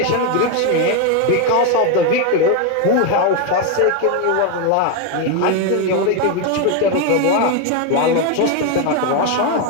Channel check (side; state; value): both; different; correlation 0.02